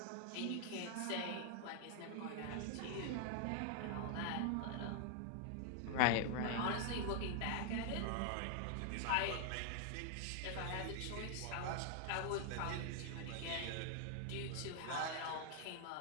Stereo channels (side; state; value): both; different; correlation 0.00